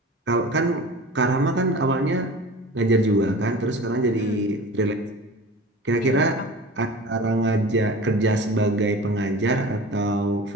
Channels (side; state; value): both; normal; correlation 0.37